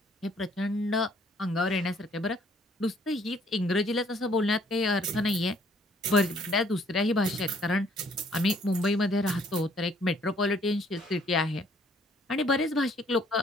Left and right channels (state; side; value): normal; both; correlation 0.62